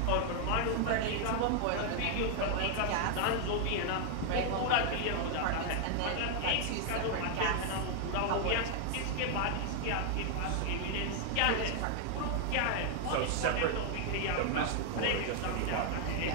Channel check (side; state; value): both; different; correlation 0.00